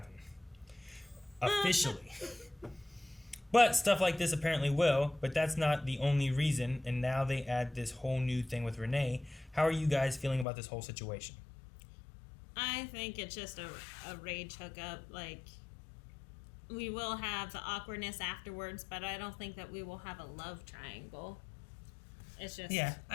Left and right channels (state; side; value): drops out; right; at 10.5 s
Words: Officially. But stuff like this apparently will, but that's not the only reason, and now they add this whole new thing with Renee. How are you guys feeling about this whole situation? I think it's just a rage hookup. Like, we will have the awkwardness afterwards, but I don't think that we will have a love triangle. It's just... Yeah,